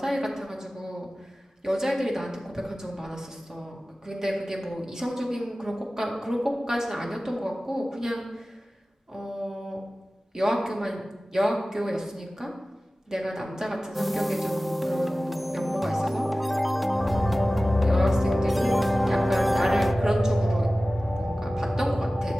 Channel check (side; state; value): both; normal; correlation 0.96